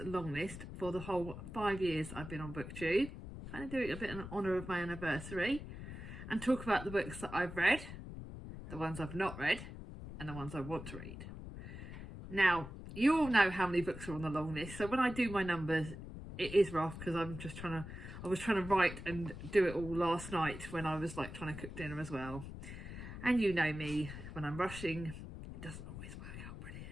long list for the whole 5 years I've been on booktube, kind of doing a bit in honour of my anniversary, and talk about the books that I've read, the ones I've not read, and the ones I want to read. Now, you all know how many books are on the long list, so when I do my numbers, it is rough because I was trying to write and do it all last night when I was like trying to cook dinner as well. And you know me, when I'm rushing, it doesn't always work out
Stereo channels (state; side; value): noise; left; rumble, 10 dB below the sound